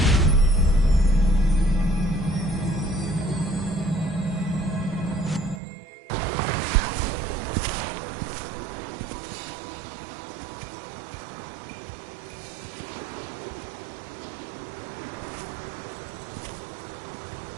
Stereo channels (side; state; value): left; drops out; at 5.6 s